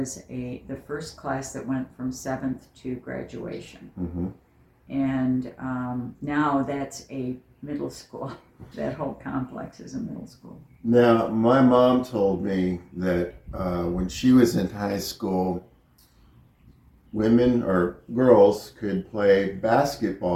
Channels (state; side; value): identical; both; correlation 1.00